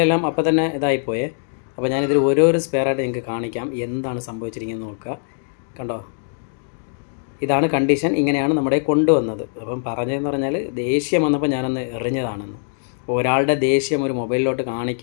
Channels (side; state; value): right; silent; digital silence